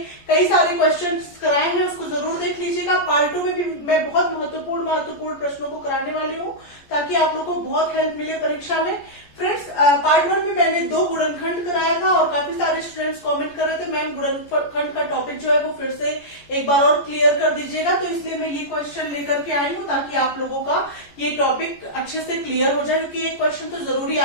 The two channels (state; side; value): late; right; 14 ms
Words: कई सारे क्वेश्चंस कराए हैं, उसको जरूर देख लीजिएगा। पार्ट 2 में भी मैं बहुत महत्वपूर्ण प्रश्नों को कराने वाली हूँ ताकि आप लोग को बहुत हेल्प मिले परीक्षा में। फ्रेंड्स, पार्ट 1 में मैंने 2 गुणनखंड कराया था और काफी सारे स्टूडेंट्स कमेंट कर रहे थे मैम गुणनखंड का टॉपिक जो है वो फिर से एक बार और क्लियर कर दीजिएगा। तो इसलिए मैं ये क्वेश्चन लेकर के आई हूँ ताकि आप लोगों का ये टॉपिक अच्छे से क्लियर हो जाए, क्योंकि ये क्वेश्चन तो जरूरी